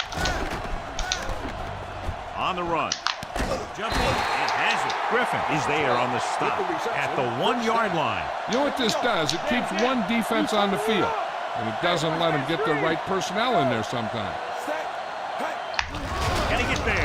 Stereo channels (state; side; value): identical; both; correlation 1.00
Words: On the run. Jumping and has it. Griffin is there on the stop at the 1-yard line. You know what this does? It keeps one defense on the field, and it doesn't let them get the right personnel in there sometimes. Can he get